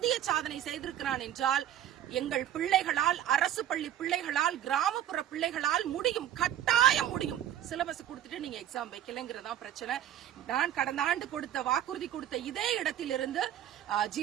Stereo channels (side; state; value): left; quieter; 11.0 dB